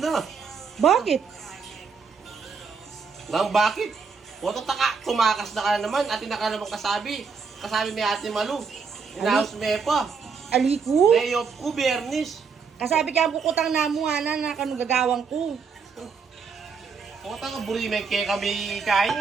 Bakit? Nang bakit? Oto taka, tumakas na ka na naman. Atin na ka naman kasabi. Kasabi ni Ate Malu. Inaos me pa. Ali ko? Day off ko, Bernis. Kasabi kaya bukutang namo ana na kanugagawang ko. Oto ka, burimeng kaya kami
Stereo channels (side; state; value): left; quieter; 5.5 dB